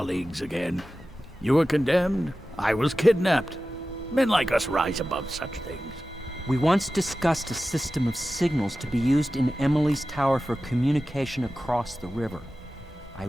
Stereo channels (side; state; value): both; normal; correlation 0.95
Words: again. You were condemned. I was kidnapped. Men like us rise above such things. We once discussed a system of signals to be used in Emily's tower for communication across the river. I